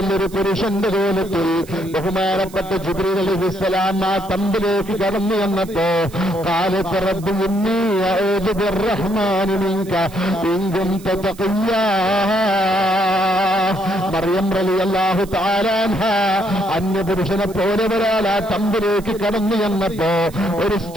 ഒരു പുരുഷന്റെ കോലത്തിൽ ബഹുമാനപ്പെട്ട ജിബ്രീൽ അലൈഹിസ്സലാം ആ തമ്പിലേക്ക് കടന്നു വന്നപ്പോ ഖാലത് റബ്ബി ഇന്നി അഊദു ബിർറഹ്മാനി മിൻക ഇൻ കുൻത തഖിയ്യാ. മറിയം റളിയല്ലാഹു തആല അൻഹ അന്യപുരുഷനെ പോലെ ഒരാൾ ആ തമ്പിലേക്ക് കടന്നു വന്നപ്പോ ഒരു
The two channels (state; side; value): noise; right; hiss, 21 dB below the sound